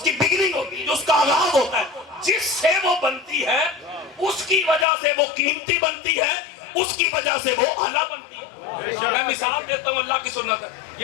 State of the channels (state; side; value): drops out; right; at 4.9 s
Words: کی بگننگ ہوتی ہے, جو اس کا آغاز ہوتا ہے, جس سے وہ بنتی ہے اس کی وجہ سے وہ قیمتی بنتی ہے, اس کی وجہ سے وہ اعلیٰ بنتی ہے. میں مثال دیتا ہوں, اللہ کی سنت ہے.